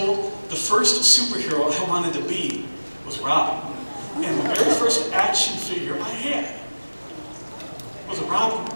the first superhero I wanted to be was Robin. And the very first action figure I had was a Robin.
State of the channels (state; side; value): inverted; both; correlation -1.00